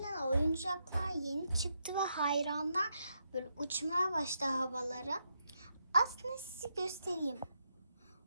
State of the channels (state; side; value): inverted; both; correlation -0.81